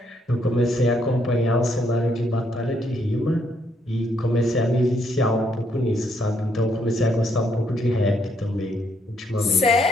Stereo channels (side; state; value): both; normal; correlation 0.73